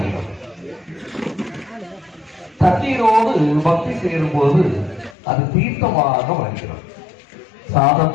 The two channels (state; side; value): drops out; right; at 5.2 s